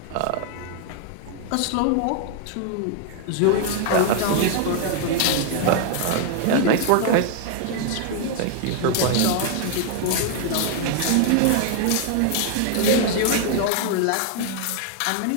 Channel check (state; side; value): different; both; correlation 0.00